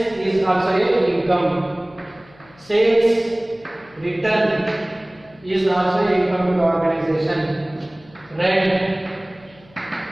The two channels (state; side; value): noise; left; hum, 27 dB below the sound